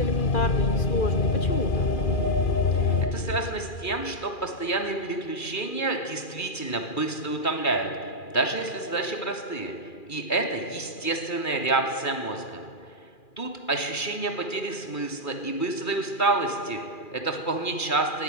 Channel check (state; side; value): late; right; 2.3 ms